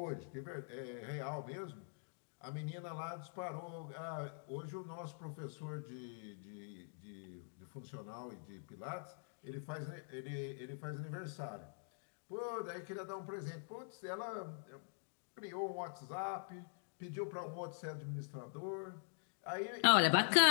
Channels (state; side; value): silent; right; digital silence